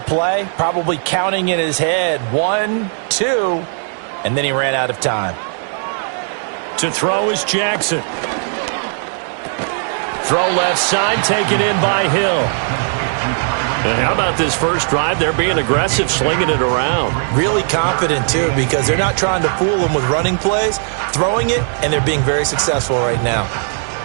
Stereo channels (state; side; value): silent; left; 67 dB below the other